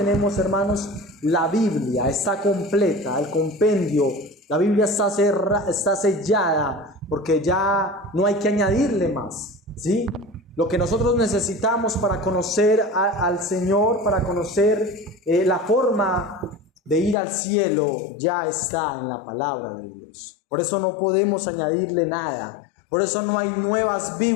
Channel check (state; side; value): drops out; right; at 17.2 s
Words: hermanos, la Biblia está completa, el compendio. La Biblia está sellada, porque ya no hay que añadirle más, ¿sí? Lo que nosotros necesitamos para conocer al Señor, para conocer la forma de ir al cielo, ya está en la palabra de Dios. Por eso no podemos añadirle nada. Por eso no hay nuevas